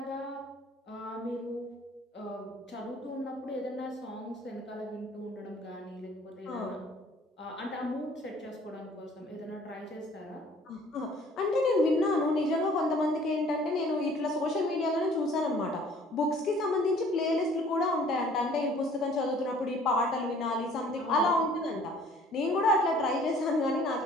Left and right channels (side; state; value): both; normal; correlation 0.54